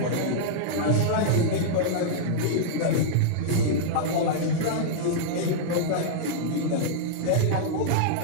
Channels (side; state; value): both; different; correlation -0.02